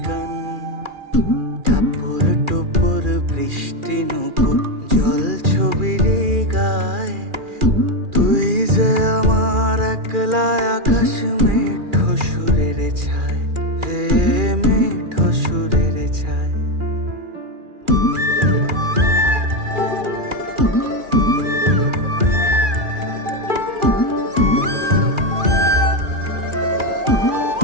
গান, টাপুর টুপুর বৃষ্টি নুপুর জল ছবির গায়, তুই যে আমার একলা আকাশ মেঠো সুরের ছায় রে, মেঠো সুরের ছায়।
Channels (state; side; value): late; left; 2.4 ms